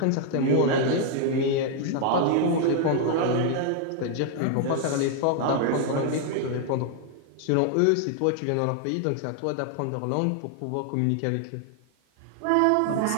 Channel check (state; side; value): different; both; correlation 0.00